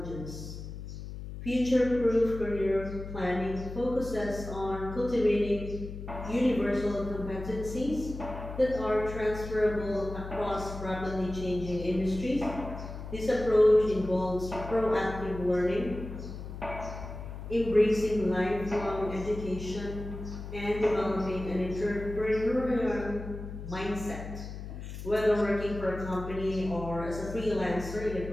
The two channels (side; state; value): left; noise; hum, 9 dB below the sound